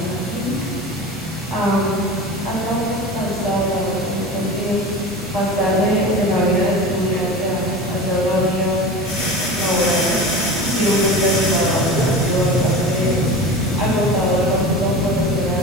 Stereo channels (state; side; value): normal; both; correlation 0.32